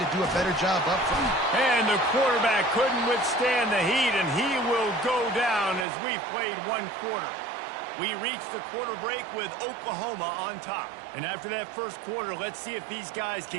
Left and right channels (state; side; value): drops out; left; at 5.9 s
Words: do a better job up front. And the quarterback couldn't withstand the heat, and he will go down as we've played one quarter. We reached the quarter break with Oklahoma on top. And after that first quarter, let's see if these guys